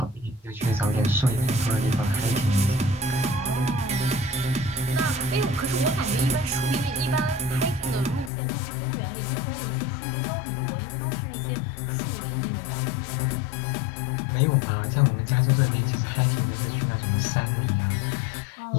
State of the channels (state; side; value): drops out; right; at 8.3 s